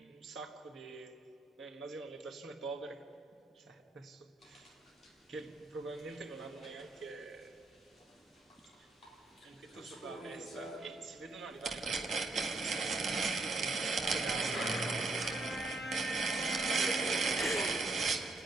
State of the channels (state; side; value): quieter; left; 3.2 dB